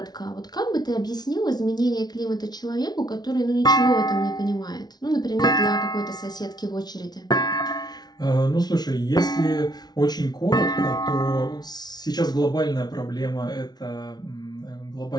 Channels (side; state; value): right; late; 0.19 ms